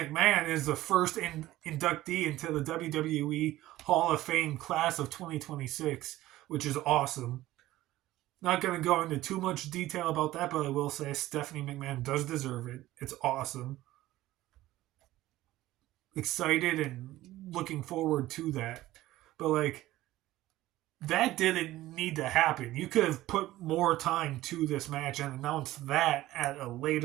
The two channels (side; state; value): left; quieter; 16.0 dB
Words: is the first inductee into the WWE Hall of Fame class of 2026, which is awesome. Not going to go into too much detail about that, but I will say Stephanie McMahon does deserve it. It's awesome. Excited and looking forward to that. But, like, that didn't need to happen. You could have put more time to this match and announced that at a